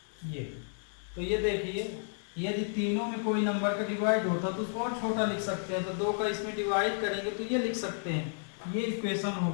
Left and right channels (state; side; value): silent; right; 56 dB below the other